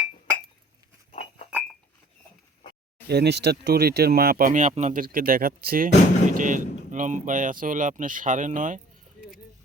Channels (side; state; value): both; normal; correlation 0.52